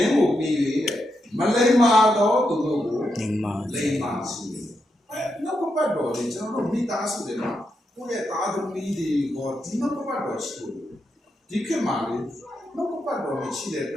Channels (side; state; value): both; normal; correlation 0.83